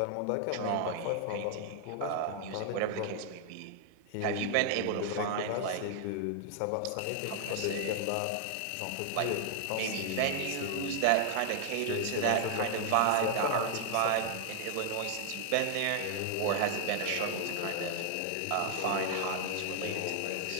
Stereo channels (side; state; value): both; different; correlation 0.00